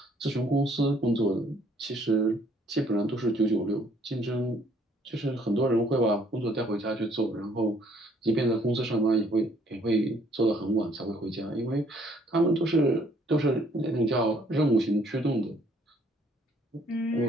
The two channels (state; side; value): normal; both; correlation 0.63